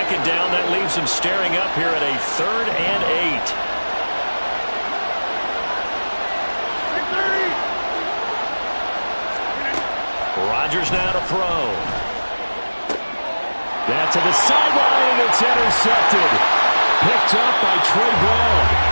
down, that leaves him staring up here at a 3rd and 8. Rodgers now to throw. That to the sideline, and it's intercepted. Picked up by Trey Brown.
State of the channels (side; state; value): both; inverted; correlation -1.00